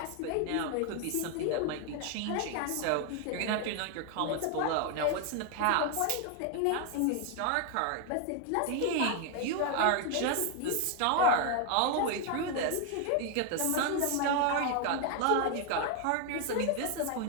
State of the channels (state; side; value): different; both; correlation 0.01